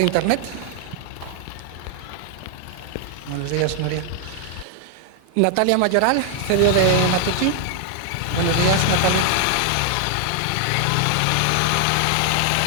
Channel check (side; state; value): both; different; correlation 0.00